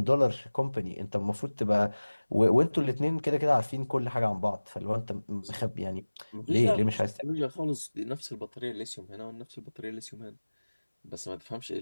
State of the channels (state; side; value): inverted; both; correlation -1.00